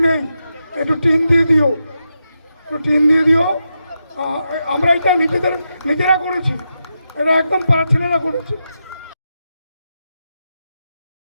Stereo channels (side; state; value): both; inverted; correlation -0.87